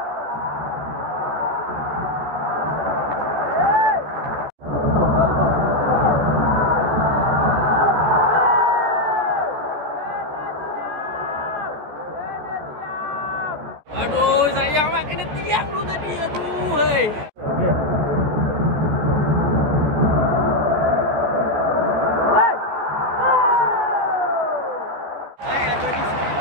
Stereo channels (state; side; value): late; left; 14 ms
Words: Aduh, sayang mak kena tiang tu tadi. Aduh, hei. Okey.